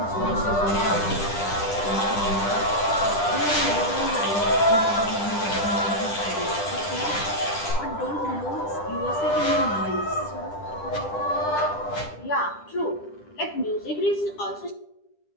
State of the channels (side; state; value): right; late; 10 ms